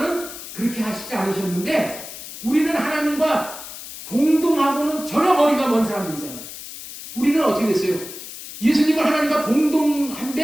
그렇게 하시지 않으셨는데 우리는 하나님과 동등하고는 전혀 거리가 먼 사람들이잖아요. 우리는 어떻게 됐어요? 예수님은 하나님과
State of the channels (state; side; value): noise; left; hiss, 12 dB below the sound